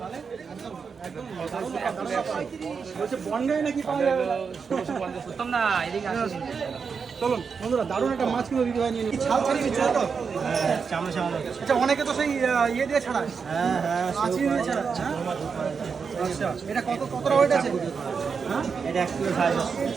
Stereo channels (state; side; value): quieter; left; 5.7 dB